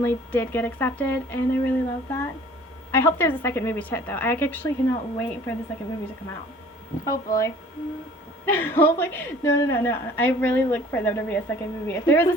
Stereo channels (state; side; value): normal; both; correlation 0.50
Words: did get accepted, and I really love that. I hope there's a second movie to it, though. I actually cannot wait for the second movie to come out. Hopefully. Hopefully. No. I really look for there to be a second movie. If there is